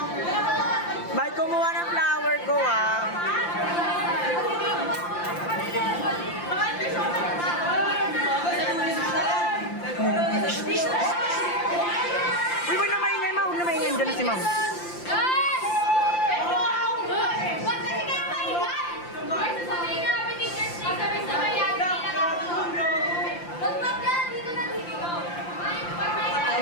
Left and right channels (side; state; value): right; late; 5.8 ms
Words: Ba't kumuha ng flower ko, ah? Uy, huwag na maingay, ma. Huwag na maingay. Diyan na si ma'am.